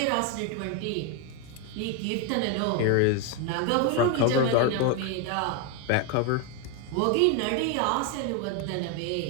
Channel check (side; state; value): both; different; correlation 0.01